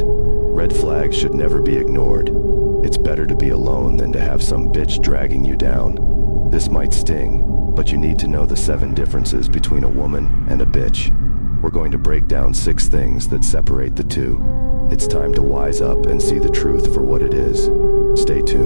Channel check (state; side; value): inverted; both; correlation -1.00